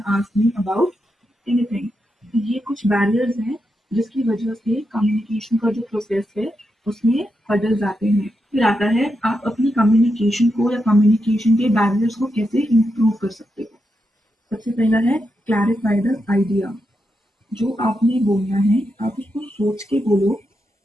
ask me about anything. ये कुछ बैरियर्स हैं जिसकी वजह से कम्युनिकेशन का जो प्रोसेस है उसमें हर्डल्स आते हैं। फिर आता है आप अपनी कम्युनिकेशन को या कम्युनिकेशन के बैरियर्स को कैसे इम्प्रूव कर सकते हो। सबसे पहला है क्लैरिफाई द आइडिया। जो आपने बोलना है आप उसको सोच के बोलो,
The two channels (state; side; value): normal; both; correlation 0.85